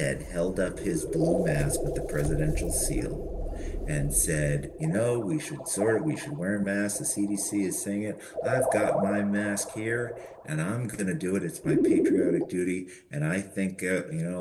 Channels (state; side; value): identical; both; correlation 1.00